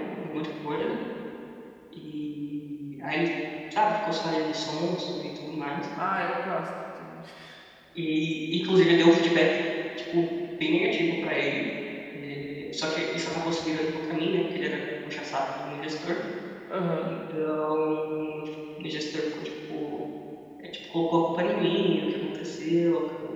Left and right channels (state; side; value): identical; both; correlation 1.00